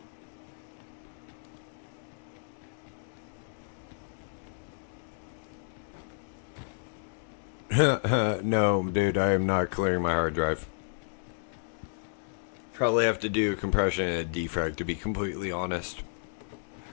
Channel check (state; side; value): silent; right; digital silence